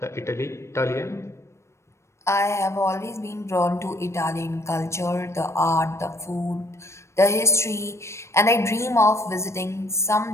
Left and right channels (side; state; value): right; late; 0.13 ms